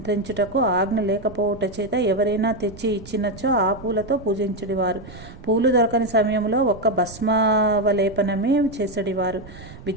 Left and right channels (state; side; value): noise; right; rumble, 17 dB below the sound